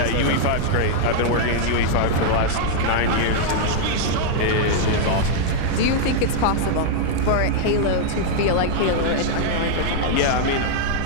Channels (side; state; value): both; different; correlation -0.01